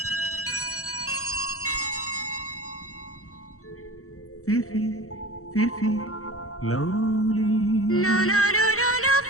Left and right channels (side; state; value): right; late; 0.64 ms